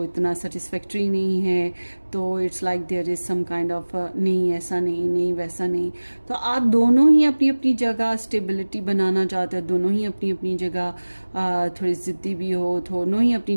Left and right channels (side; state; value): both; inverted; correlation -1.00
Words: इतना सेटिस्फैक्ट्री नहीं है। तो it's like there is some kind of नहीं ऐसा नहीं वैसा नहीं। तो आप दोनों ही अपनी अपनी जगह स्टेबिलिटी बनाना चाहते हो, दोनों ही अपनी अपनी जगह थोड़ी ज़िद्दी भी हो, दोनों ही अपनी